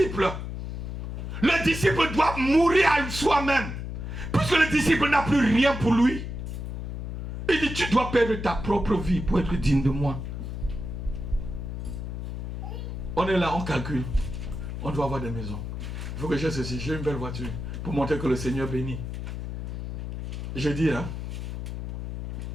Le disciple doit mourir à soi-même. Puisque le disciple n'a plus rien pour lui. Il dit, tu dois perdre ta propre vie pour être digne de moi. On est là, on calcule. On doit avoir des maisons. Il faut que j'ai ceci, j'ai une belle voiture. Pour montrer que le Seigneur bénit. Je dis, hein.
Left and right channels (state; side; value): noise; left; hum, 6 dB below the sound